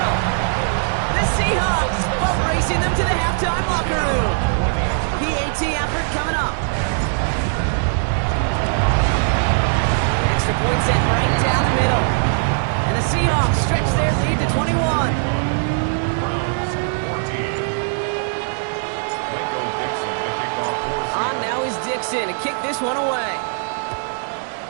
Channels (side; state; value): left; silent; digital silence